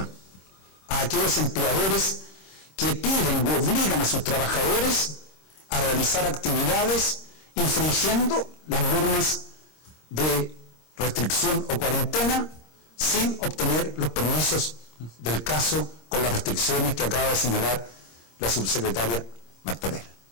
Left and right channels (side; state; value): right; late; 26 ms